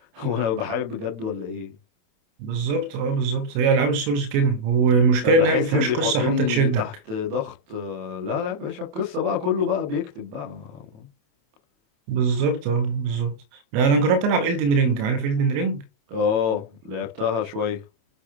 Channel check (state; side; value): late; left; 28 ms